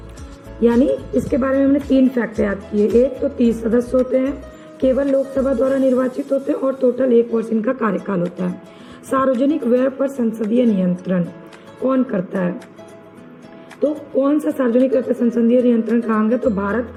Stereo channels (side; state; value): both; identical; correlation 1.00